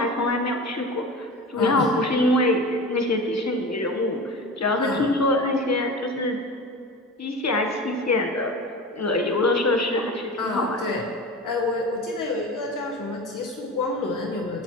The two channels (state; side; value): normal; both; correlation 0.31